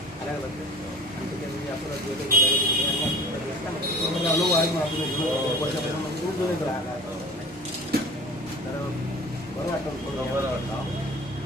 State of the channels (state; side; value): normal; both; correlation 0.42